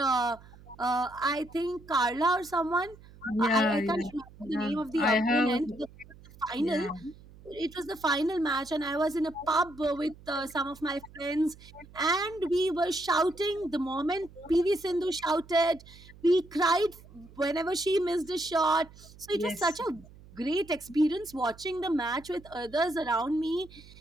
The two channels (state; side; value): noise; right; hum, 21 dB below the sound